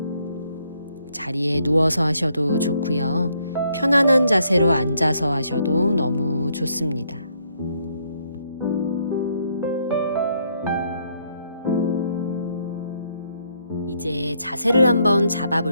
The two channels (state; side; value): inverted; both; correlation -0.72